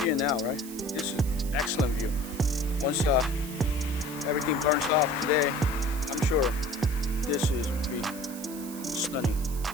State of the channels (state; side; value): noise; right; hiss, 13 dB below the sound